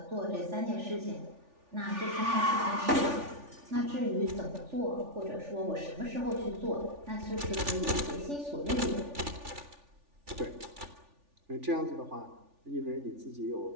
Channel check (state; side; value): late; left; 3.4 ms